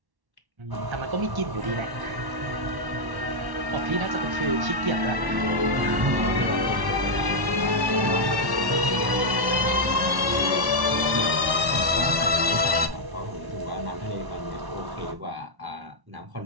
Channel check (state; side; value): late; left; 1.1 ms